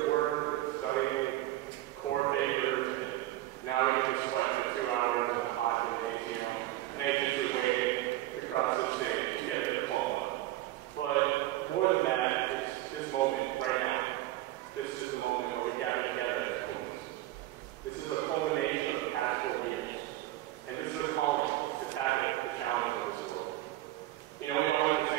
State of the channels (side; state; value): left; quieter; 15.9 dB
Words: work and studying, core papers, and now we get to sweat for 2 hours in a hot gymnasium, anxiously waiting to cross this stage and get a diploma. But more than that, it's this moment right now. This is the moment where we gather together as Pumas. This is a culmination of the past 4 years. And this is a calling to tackle the challenges of this world. You know, we all went to